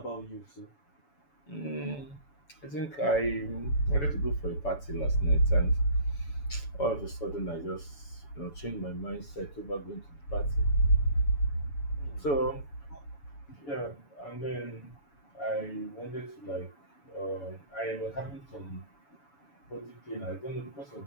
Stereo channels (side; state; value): right; late; 7.0 ms